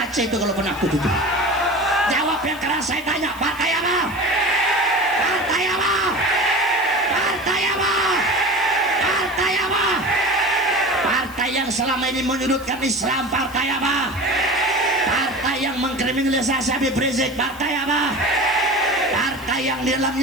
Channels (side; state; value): right; noise; hiss, 21 dB below the sound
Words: Aceh itu kalau penakut itu. Jawab yang keras, saya tanya, partai apa? Partai apa? Partai apa? Partai apa? Partai yang selama ini menyudutkan Islam, partai apa? Partai yang mengkriminalisasi Habib Rizik, partai apa? Partai yang di